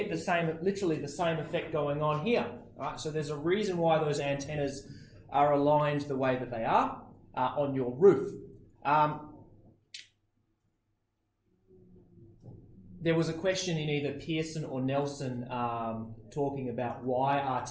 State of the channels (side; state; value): both; identical; correlation 1.00